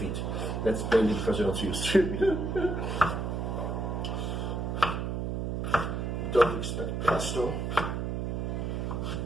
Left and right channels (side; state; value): right; noise; hum, 1 dB below the sound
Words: That's mainly because they're not used to. Don't expect pesto.